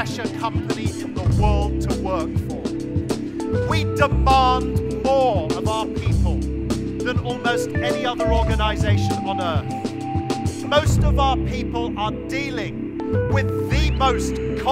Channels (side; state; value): both; identical; correlation 1.00